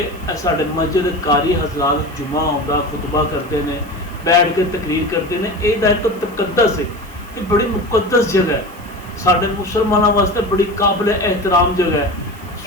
साडे मस्जिद कारी हजरात जुमा आउंदा खुतबा करते हैं, बैठ के तकरीर करते हैं। यह एक तकद्दस है, ये बड़ी मुकद्दस जगह है, साडे मुसलमानों वास्ते बड़ी काबिल एहतराम जगह है।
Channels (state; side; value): noise; right; hiss, 24 dB below the sound